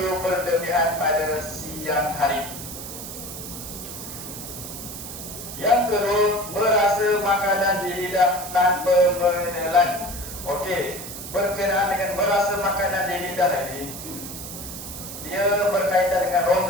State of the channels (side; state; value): right; noise; hiss, 10 dB below the sound